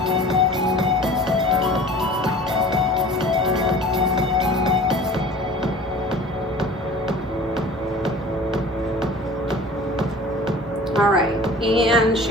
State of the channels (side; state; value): both; normal; correlation 0.43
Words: All right, and